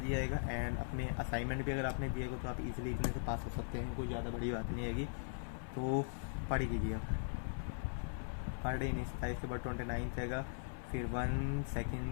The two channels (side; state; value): right; silent; 51 dB below the other